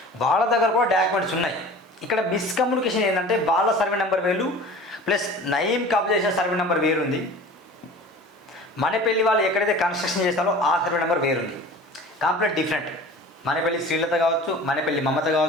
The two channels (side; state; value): both; normal; correlation 0.40